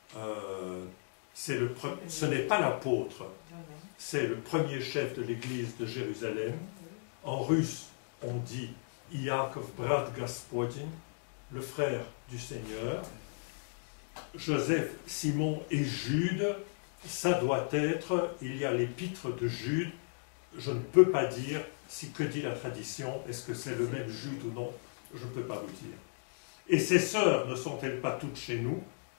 ce n'est pas l'apôtre, c'est le premier chef de l'église de Jérusalem. En russe, on dit Iakov brat Gospodin, le frère du Seigneur. Joseph, Simon et Jude, ça doit être, il y a l'épître de Jude, je ne peux pas dire que dit la tradition, est-ce que c'est le même Jude ou non, je ne peux pas vous dire. Et ses sœurs ne sont-elles pas toutes chez nous?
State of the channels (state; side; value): silent; right; digital silence